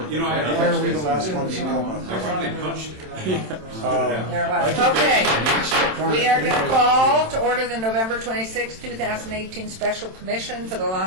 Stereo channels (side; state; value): left; late; 27 ms